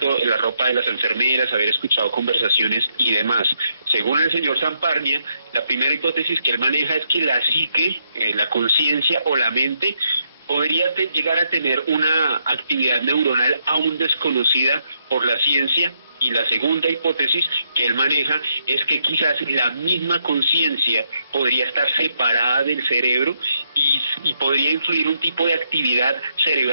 la ropa de las enfermeras, haber escuchado conversaciones y demás. Según el señor Samparnia, la primera hipótesis que él maneja es que la psique, la conciencia o la mente podría llegar a tener una actividad neuronal aún desconocida por la ciencia. Y la segunda hipótesis que él maneja es que quizás la misma conciencia podría estar separada del cerebro y podría influir un tipo de actividad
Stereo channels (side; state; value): both; inverted; correlation -0.77